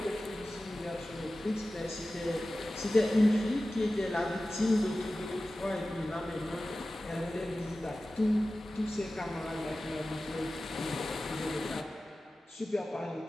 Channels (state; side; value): normal; both; correlation 0.95